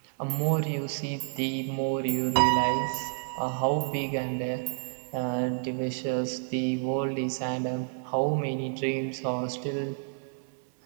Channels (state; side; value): silent; left; 58 dB below the other